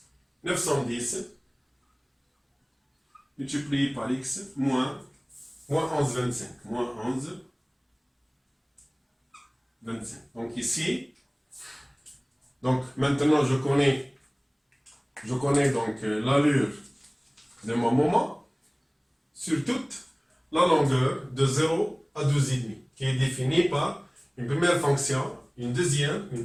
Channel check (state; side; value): identical; both; correlation 1.00